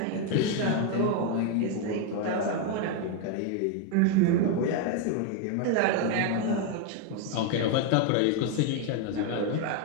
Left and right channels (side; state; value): both; different; correlation 0.01